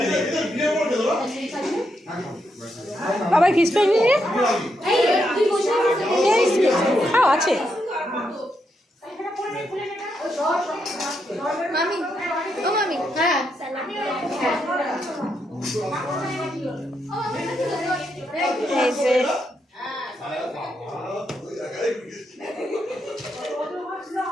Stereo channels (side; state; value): both; normal; correlation 0.81